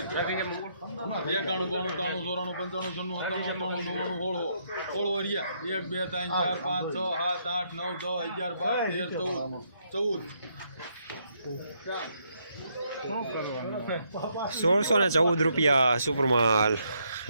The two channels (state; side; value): inverted; both; correlation -0.75